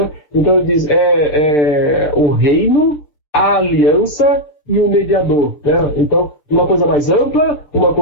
Então ele diz, o reino, a aliança e o mediador, né? Então, uma coisa mais ampla, uma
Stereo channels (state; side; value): late; right; 6.7 ms